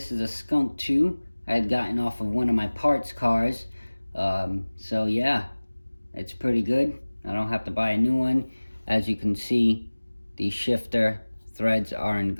is a Skunk 2 I had gotten off of one of my parts cars. So yeah, it's pretty good. I don't have to buy a new one. As you can see, the shifter threads are in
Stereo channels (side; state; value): both; inverted; correlation -1.00